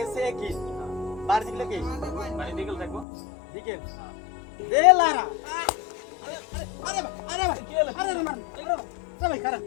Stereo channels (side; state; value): right; drops out; at 3.1 s